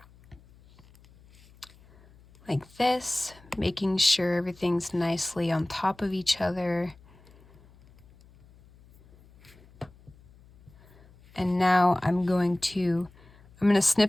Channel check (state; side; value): noise; left; hum, 26 dB below the sound